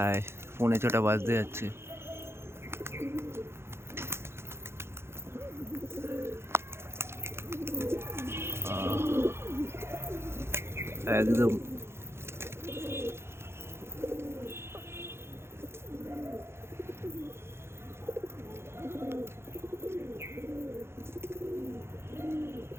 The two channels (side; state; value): left; late; 0.12 ms